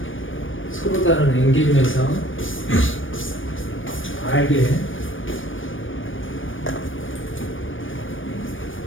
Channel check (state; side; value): late; right; 0.57 ms